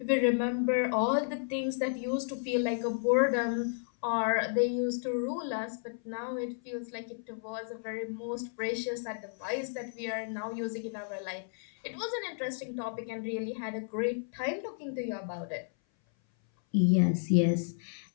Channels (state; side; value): silent; right; 56 dB below the other